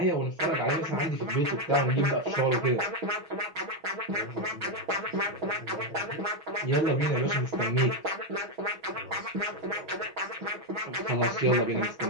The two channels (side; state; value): left; late; 6.2 ms